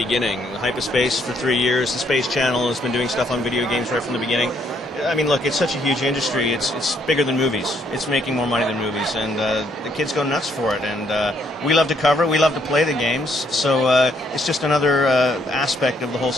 HypaSpace for 3 years. The Space Channel has been doing stuff on video games right from the beginning. I mean, look, it's such a huge industry. It's bigger than movies. It's making more money than movies, and the kids go nuts for it. And we love to cover it. We love to play the games. So it's just another aspect of the whole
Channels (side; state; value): both; normal; correlation 0.70